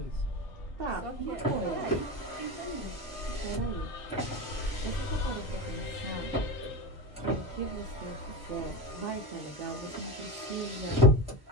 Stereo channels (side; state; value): both; normal; correlation 0.21